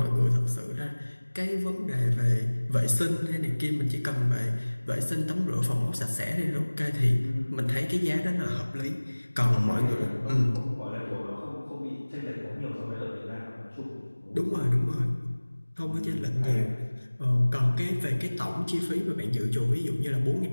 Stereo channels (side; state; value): both; inverted; correlation -1.00